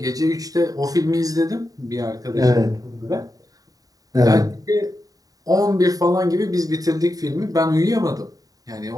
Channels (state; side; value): late; left; 0.18 ms